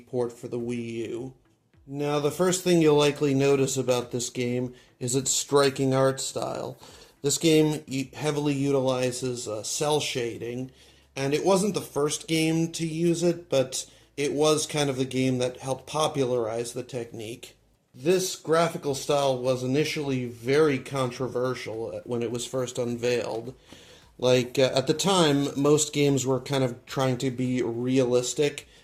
port for the Wii U. Now, the first thing you'll likely notice about this game is its striking art style. This game heavily utilizes cell shading, and it wasn't the first game to use it, but it was kind of the game that helped popularize the technique. This graphical style was initially very controversial when it was first unveiled. At the time, most games were kind of trying to be realistic,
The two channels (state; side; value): identical; both; correlation 1.00